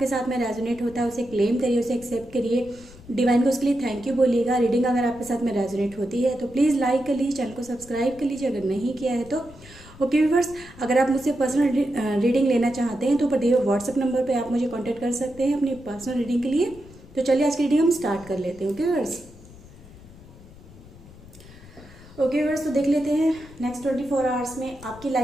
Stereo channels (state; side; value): noise; left; rumble, 20 dB below the sound